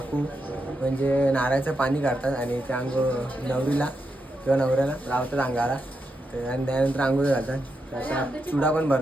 म्हणजे नारळाचं पाणी काढतात आणि त्या नवरीला किंवा नवऱ्याला लावतात अंगाला. तर आणि त्यानंतर आंघोळ घालतात. तर आता चुडा पण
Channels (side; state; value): both; normal; correlation 0.85